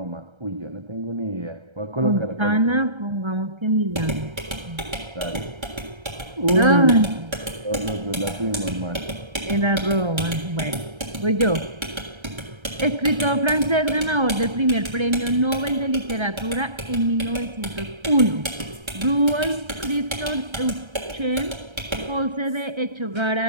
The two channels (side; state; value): left; late; 1.3 ms